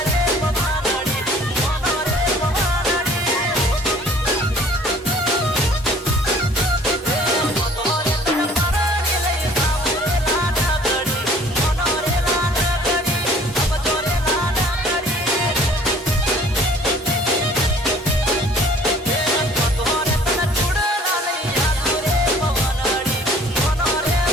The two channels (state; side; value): normal; both; correlation 0.53